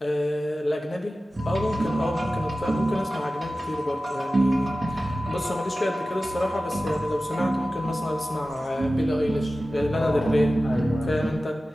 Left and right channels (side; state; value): both; normal; correlation 0.95